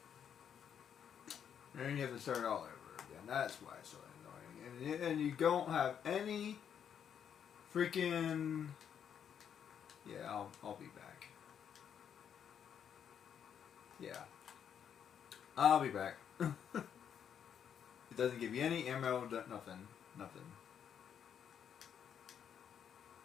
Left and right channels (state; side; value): quieter; right; 8.3 dB